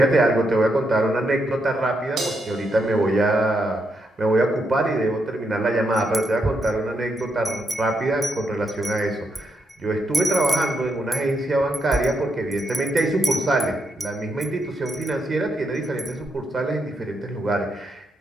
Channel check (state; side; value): normal; both; correlation 0.81